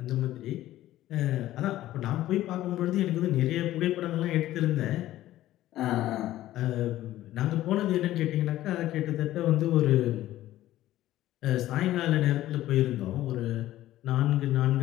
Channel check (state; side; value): quieter; right; 14.5 dB